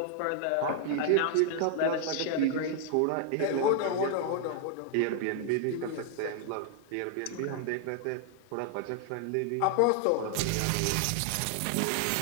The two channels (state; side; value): different; both; correlation 0.00